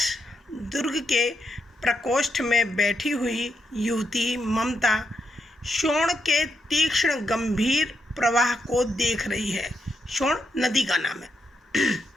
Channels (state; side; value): normal; both; correlation 0.82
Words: दुर्ग के प्रकोष्ठ में बैठी हुई युवती ममता शोण के तीक्ष्ण गंभीर प्रवाह को देख रही है। शोण नदी का नाम है।